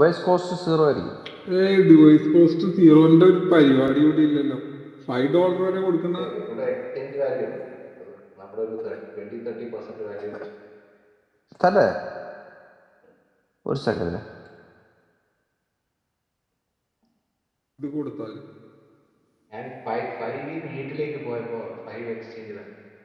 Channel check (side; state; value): both; identical; correlation 1.00